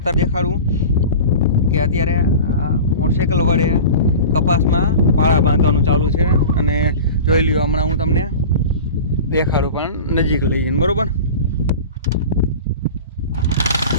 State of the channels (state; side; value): inverted; both; correlation -0.34